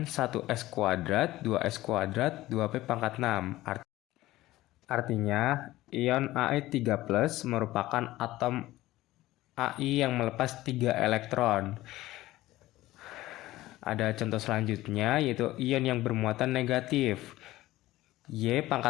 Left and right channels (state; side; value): quieter; right; 16.8 dB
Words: 1s kuadrat 2s kuadrat 2p pangkat 6. Artinya ion Ai3+ merupakan atom Ai yang melepas 3 elektron. Ada contoh selanjutnya, yaitu ion yang bermuatan negatif, Y